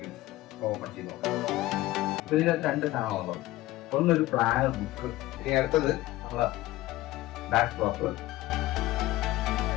ഓപ്പൺ ചെയ്ത് നോക്കാം. അപ്പൊ ഇതിനകത്ത് രണ്ട് സാധനമാണ്. ഒന്നൊരു പ്ലാനർ ബുക്ക്, ഇനി അടുത്തത് നമ്മളെ ബാക്ക് ഡ്രോപ്പ്.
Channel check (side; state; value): right; quieter; 17.2 dB